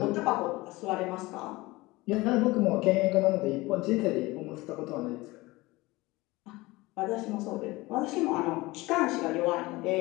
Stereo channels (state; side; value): quieter; right; 21.0 dB